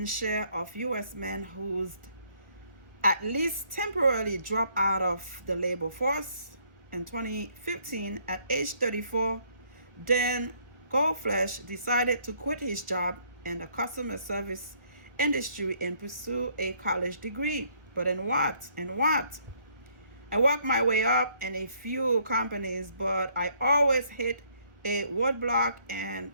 share of U.S. men who's at least temporarily dropped out of the labor force. In 2015, at age 34, Dan Goldflesh decided to quit his job in the customer service industry and pursue a college degree. But in what? I worked my way up in a few companies, but I always hit a roadblock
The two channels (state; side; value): late; left; 1.5 ms